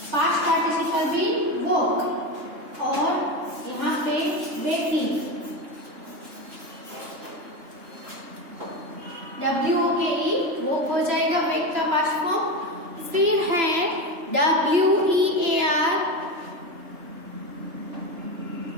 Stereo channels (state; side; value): late; left; 3.3 ms